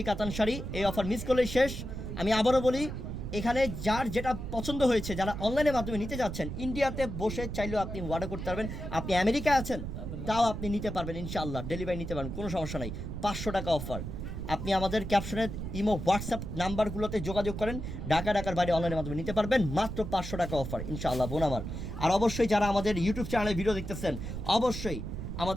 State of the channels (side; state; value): right; noise; rumble, 6 dB below the sound